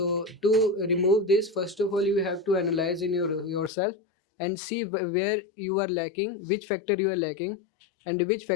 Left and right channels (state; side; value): drops out; right; at 3.7 s